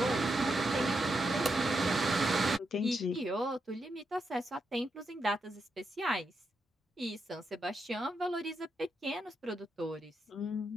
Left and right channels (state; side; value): normal; both; correlation 0.83